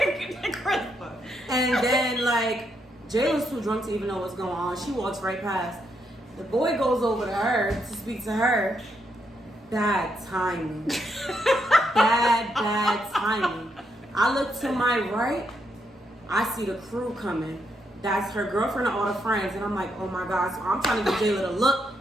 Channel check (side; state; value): both; normal; correlation 0.78